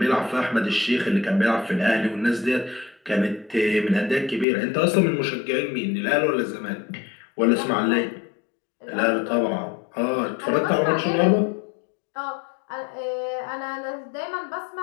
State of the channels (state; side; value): drops out; right; at 4.5 s